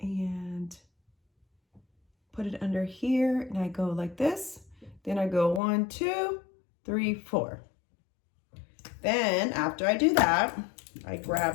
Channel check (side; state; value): right; drops out; at 5.6 s